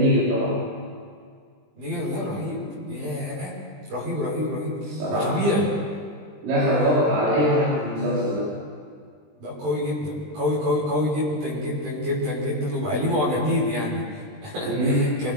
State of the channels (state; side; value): late; left; 20 ms